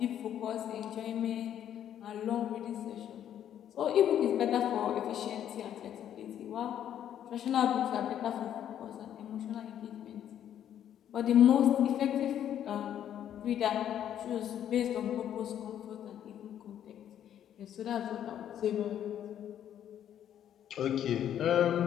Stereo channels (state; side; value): quieter; right; 10.3 dB